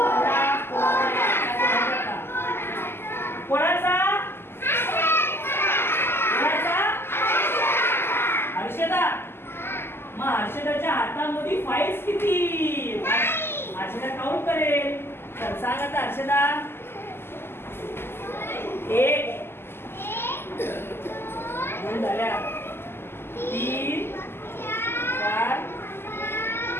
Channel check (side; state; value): right; late; 0.12 ms